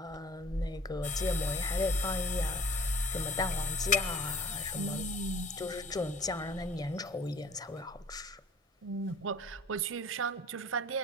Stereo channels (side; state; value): both; normal; correlation 0.49